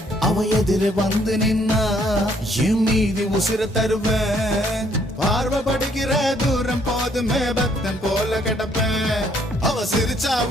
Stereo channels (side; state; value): both; normal; correlation 0.66